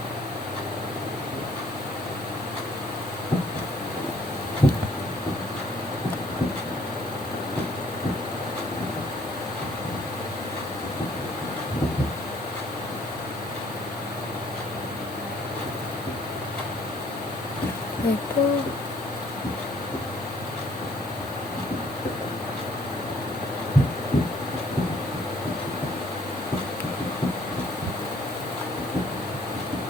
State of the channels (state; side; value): normal; both; correlation 0.62